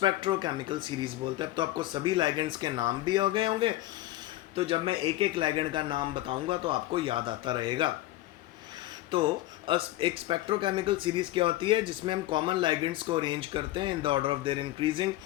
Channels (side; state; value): right; quieter; 16.1 dB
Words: सीरीज बोलते हैं। तो आपको सभी लाइगेंड्स के नाम भी हो गए होंगे, तो जब मैं एक एक लाइगेंड का नाम बताऊंगा तो आपको याद आता रहेगा। तो एक स्पेक्ट्रोकेमिकल सीरीज क्या होती है, जिसमें हम कॉमन लाइगेंड्स को अरेंज करते हैं in the order of their increasing